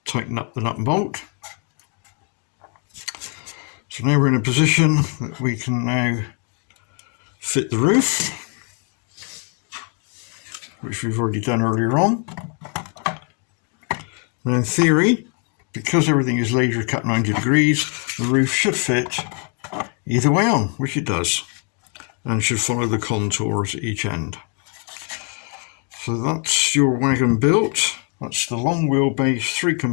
tighten up the nut and bolt. So now we're in a position that we can now fit the roof, which we've already done earlier on. And in theory, because everything is laser cut 90 degrees, the roof should fit either way on, which it does, and should follow the contours at each end. So that's your wagon built. That's the long wheelbase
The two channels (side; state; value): right; quieter; 39.6 dB